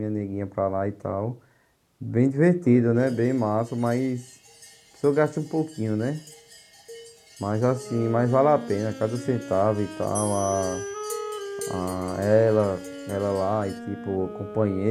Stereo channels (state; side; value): identical; both; correlation 1.00